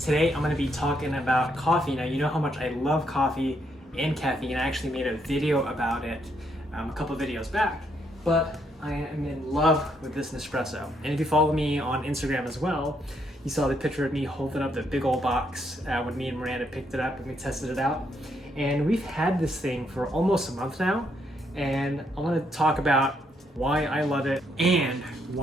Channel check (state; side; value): normal; both; correlation 0.75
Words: I'm going to be talking about coffee. Now you know how much I love coffee and caffeine. I actually made a video about it a couple videos back, but I am in love with this Nespresso. And if you follow me on Instagram as well, you saw the picture of me holding up the big old box when me and Miranda picked it up and we tested it out. And we've had this thing for almost a month now, and I want to talk about why I love it and